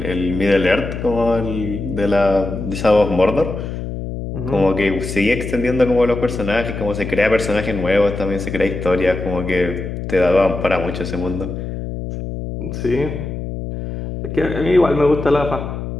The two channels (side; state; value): left; noise; hum, 6 dB below the sound